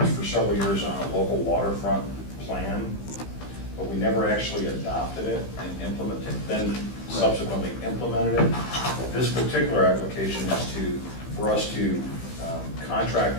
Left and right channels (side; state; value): right; late; 15 ms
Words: for several years on a local waterfront plan, but we never actually adopted it and implemented, then subsequently implemented it. This particular application is for us to contract